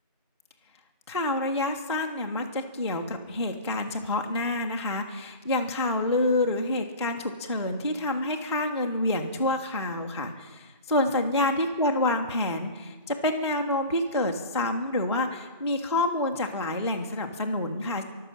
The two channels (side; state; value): both; inverted; correlation -0.33